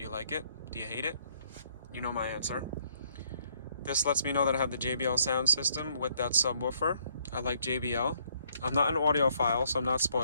you like it? Do you hate it? You know my answer. This lets me know that I have the JBL sound system with that subwoofer. I like JBL. I'm not an audiophile, so I'm not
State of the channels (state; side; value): inverted; both; correlation -0.67